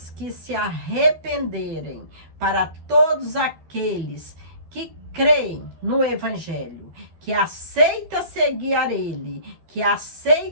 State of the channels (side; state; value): left; late; 12 ms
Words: que se arrependerem, para todos aqueles que creem no Evangelho, que aceita seguir a ele, que